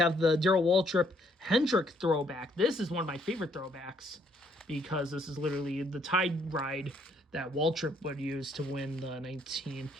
the Darrell Waltrip Hendrick throwback. This is one of my favorite throwbacks because this is literally the tide ride that Waltrip would use to win the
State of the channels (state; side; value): normal; both; correlation 0.67